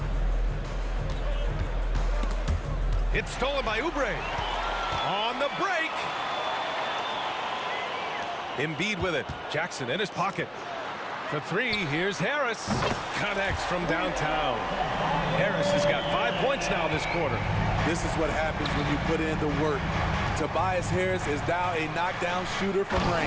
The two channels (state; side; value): identical; both; correlation 1.00